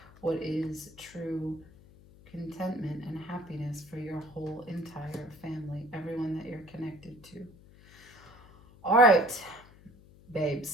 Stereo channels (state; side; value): noise; left; hum, 23 dB below the sound